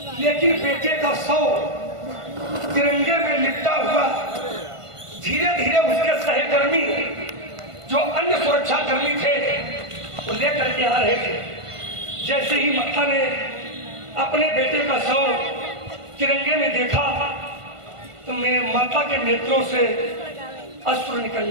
लेकिन बेटे का शव तिरंगे में लिपटा हुआ धीरे धीरे उसके सहकर्मी जो अन्य सुरक्षा कर्मी थे वो लेकर के आ रहे थे। जैसे ही माता ने अपने बेटे का शव तिरंगे में देखा तो मैं माता के नेत्रों से अश्रु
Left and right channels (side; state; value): left; late; 1.5 ms